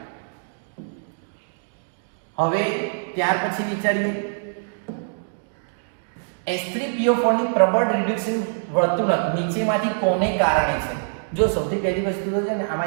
હવે ત્યાર પછી વિચારીએ H3PO4 ની પ્રબળ રિડક્શન વર્તણૂક નીચેમાંથી કોને કારણે છે? જો સૌથી પહેલી વસ્તુ તો છે ને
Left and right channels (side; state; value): left; silent; digital silence